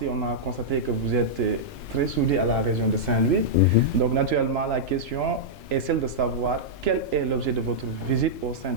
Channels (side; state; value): both; normal; correlation -0.08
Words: on a constaté que vous êtes très soudé à la région de Saint-Louis. Donc, naturellement, la question est celle de savoir quel est l'objet de votre visite au sein